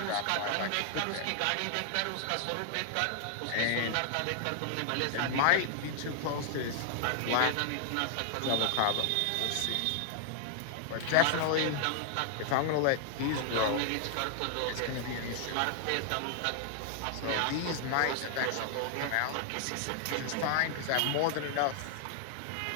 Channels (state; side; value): different; both; correlation 0.00